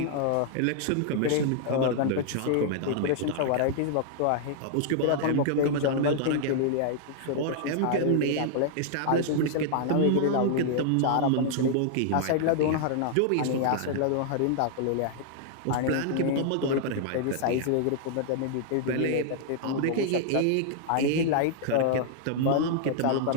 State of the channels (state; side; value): different; both; correlation -0.01